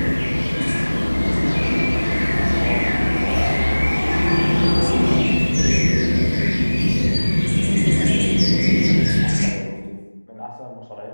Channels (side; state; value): both; inverted; correlation -1.00